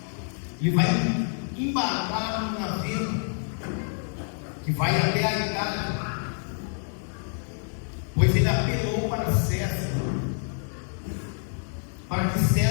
Ele vai embarcar num navio que vai até a Itália, pois ele apelou para César, para que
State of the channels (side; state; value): right; silent; 60 dB below the other